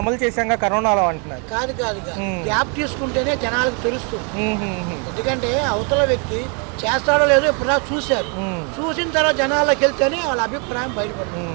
అమలు చేశాక కరోనాలో అంటున్నారు. కాదు గ్యాప్ తీసుకుంటేనే జనాలకు తెలుస్తుంది. ఎందుకంటే అవతల వ్యక్తి చేస్తాడో లేదో ఇప్పుడు చూశారు, చూసిన తర్వాత జనాల్లోకి వెళ్తేనే వాళ్ళ అభిప్రాయం బయటపడుతుంది.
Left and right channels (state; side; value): quieter; left; 36.7 dB